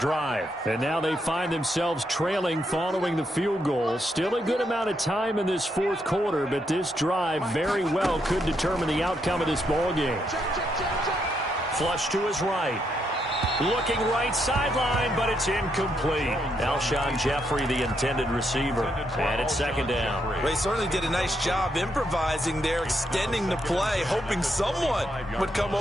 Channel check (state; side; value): normal; both; correlation 0.78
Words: drive. And now they find themselves trailing following the field goal. Still a good amount of time in this 4th quarter, but this drive very well could determine the outcome of this ball game. Flush to his right. Looking right sideline, but it's incomplete. Alshon Jeffrey, the intended receiver. And it's 2nd down. Well, they certainly did a nice job improvising there, extending the play, hoping someone would come